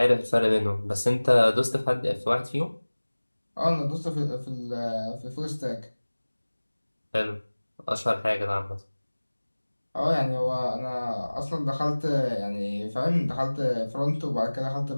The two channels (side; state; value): both; inverted; correlation -1.00